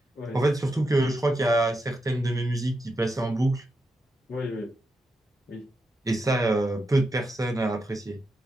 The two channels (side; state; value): both; normal; correlation 0.85